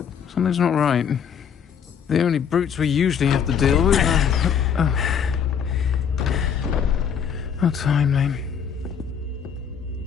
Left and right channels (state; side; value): quieter; right; 7.5 dB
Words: Something's not right. The only brutes we usually have to deal with are... How timely.